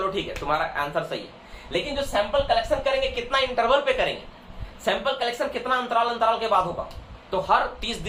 ठीक है तुम्हारा आंसर सही है, लेकिन जो सैंपल कलेक्शन करेंगे कितना इंटरवल पे करेंगे, सैंपल कलेक्शन कितना अंतराल के बाद होगा। तो हर 30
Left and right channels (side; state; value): both; identical; correlation 1.00